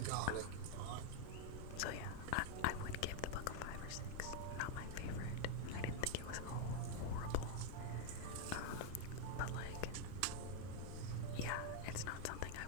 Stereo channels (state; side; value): different; both; correlation 0.00